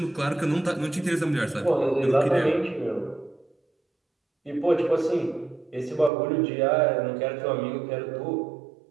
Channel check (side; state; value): left; drops out; at 6.1 s